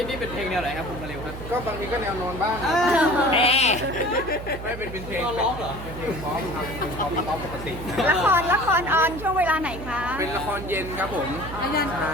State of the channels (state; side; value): noise; right; hum, 10 dB below the sound